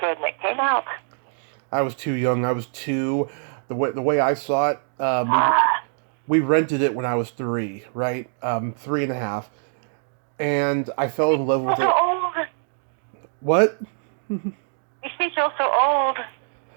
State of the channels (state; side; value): silent; left; 63 dB below the other